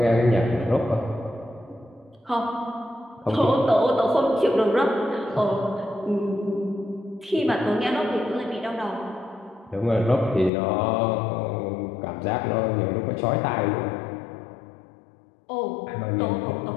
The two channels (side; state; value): right; drops out; at 10.5 s